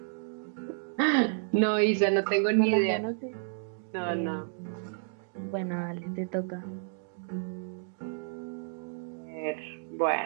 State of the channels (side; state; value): left; silent; digital silence